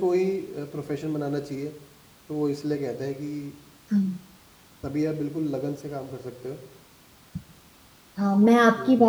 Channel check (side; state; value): both; identical; correlation 1.00